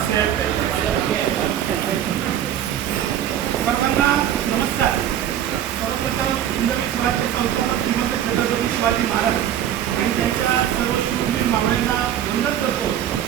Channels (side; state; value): left; quieter; 10.7 dB